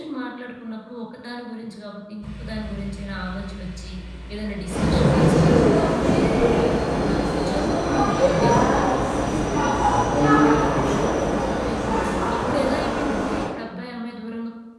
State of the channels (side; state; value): both; identical; correlation 1.00